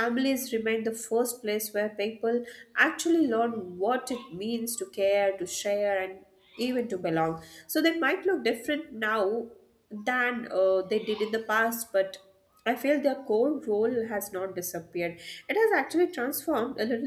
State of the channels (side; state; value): both; identical; correlation 1.00